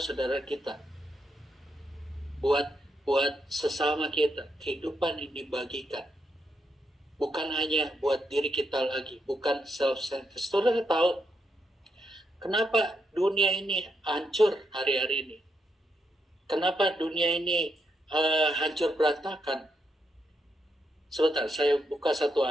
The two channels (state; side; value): normal; both; correlation 0.80